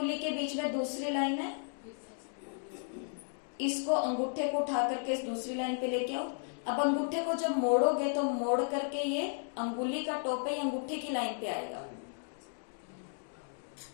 के बीच में दूसरी लाइन है। इसको अंगूठे को उठा करके इस दूसरी लाइन पे लेके आओ। अब अंगूठे को जब मोड़ोगे तो मोड़ करके ये अंगुली का टॉप है, अंगूठे की लाइन पे आएगा,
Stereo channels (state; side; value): silent; right; digital silence